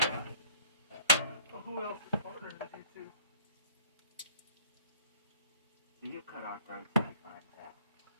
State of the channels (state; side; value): inverted; both; correlation -0.52